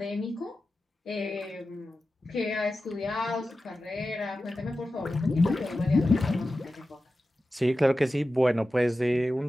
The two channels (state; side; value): normal; both; correlation 0.93